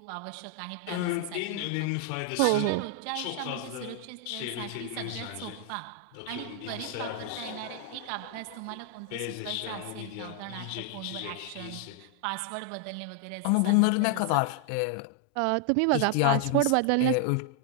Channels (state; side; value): different; both; correlation 0.00